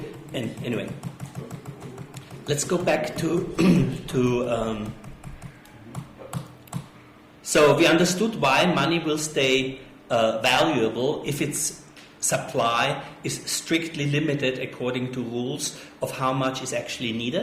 And anyway, let's go back to So we understood why money will stay valuable if its supply is strictly limited according to rules of how much is actually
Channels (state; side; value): identical; both; correlation 1.00